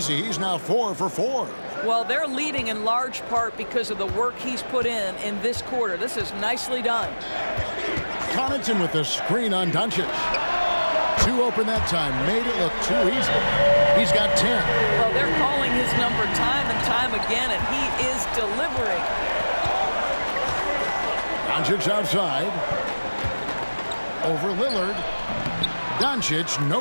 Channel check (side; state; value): both; inverted; correlation -1.00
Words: He's now 4 for 4. Well, they're leading in large part because of the work he's put in this quarter. This is nicely done. Connaughton with the screen on Doncic. 2 open that time. Made it look too easy. He's got 10. Well, they're calling his number time and time again, and he is delivering. Doncic outside. Over Lillard. Doncic, no